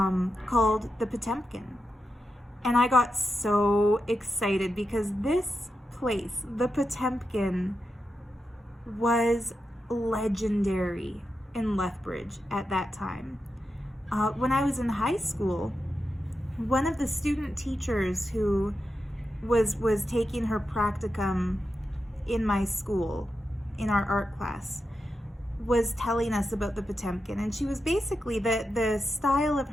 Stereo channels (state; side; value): normal; both; correlation 0.88